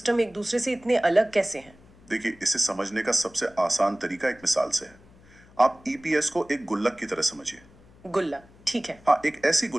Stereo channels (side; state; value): left; noise; hum, 26 dB below the sound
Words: एक दूसरे से इतने अलग कैसे हैं? देखिए, इसे समझने का सबसे आसान तरीका एक मिसाल से है। आप ईपीएस को एक गुल्लक की तरह समझिए। गुल्लक, ठीक है। हाँ, एक ऐसी